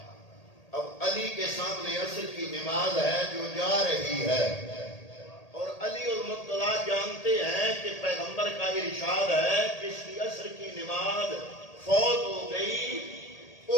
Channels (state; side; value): late; right; 1.8 ms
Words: اب علی کے سامنے عصر کی نماز ہے جو جا رہی ہے، اور علی المرتضیٰ جانتے ہیں کہ پیغمبر کا ارشاد ہے جس کی عصر کی نماز فوت ہو گئی